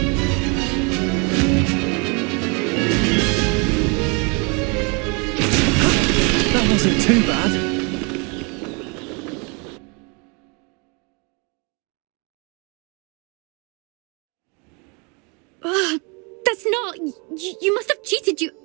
That wasn't too bad. That's not... You must have cheated, you...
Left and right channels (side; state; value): left; quieter; 32.5 dB